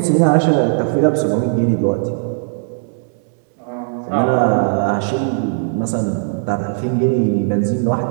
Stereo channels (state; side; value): silent; left; digital silence